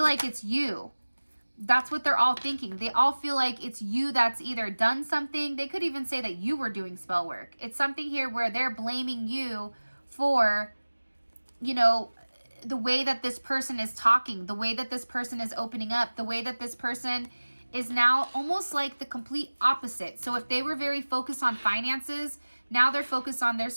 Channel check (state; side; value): inverted; both; correlation -1.00